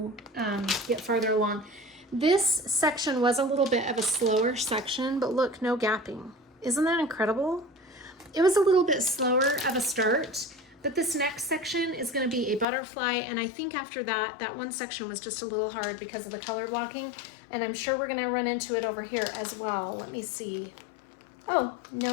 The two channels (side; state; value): right; drops out; at 12.7 s